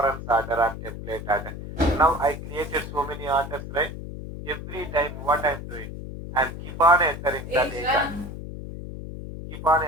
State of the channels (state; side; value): noise; left; hum, 9 dB below the sound